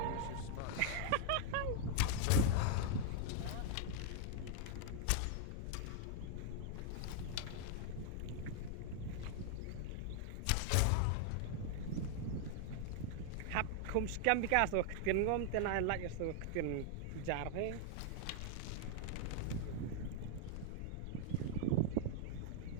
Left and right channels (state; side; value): different; both; correlation 0.00